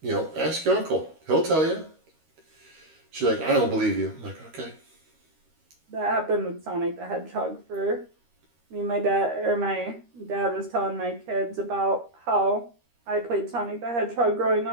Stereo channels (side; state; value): left; late; 13 ms